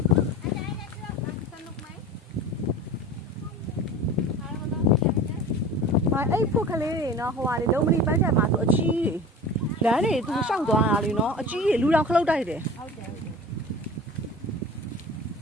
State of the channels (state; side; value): normal; both; correlation 0.37